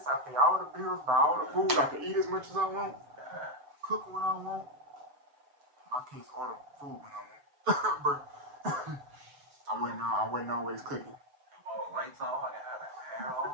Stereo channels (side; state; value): left; late; 7.2 ms